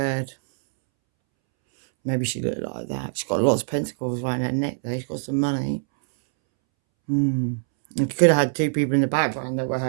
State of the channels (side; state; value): left; silent; 63 dB below the other